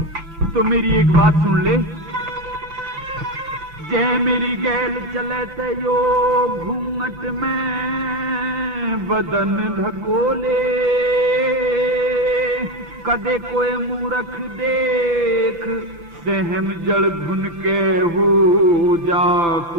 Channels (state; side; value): late; left; 5.9 ms